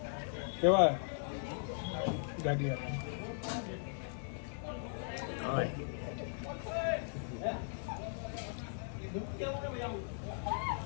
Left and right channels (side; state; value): right; silent; digital silence